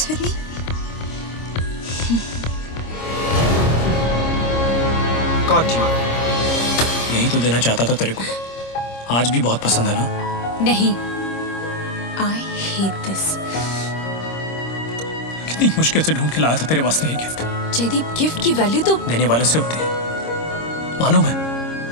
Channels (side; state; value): right; late; 26 ms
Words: with me? यही तो देना चाहता था तेरे को। आज भी बहुत पसंद है ना? नहीं, I hate this. कितनी मुश्किल से ढूंढ के लाया था तेरे वास्ते ये गिफ्ट। जयदीप, गिफ्ट की वैल्यू तो देने वाले से होती है, मालूम है?